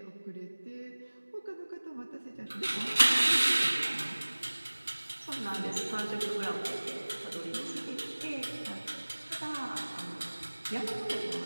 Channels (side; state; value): both; inverted; correlation -1.00